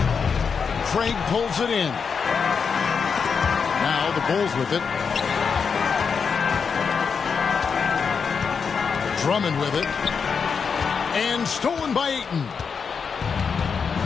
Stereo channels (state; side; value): quieter; right; 5.9 dB